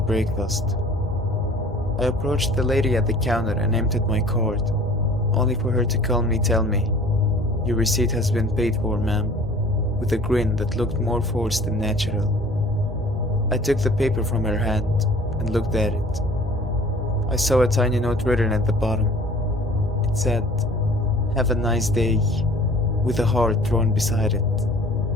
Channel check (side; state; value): both; normal; correlation 0.48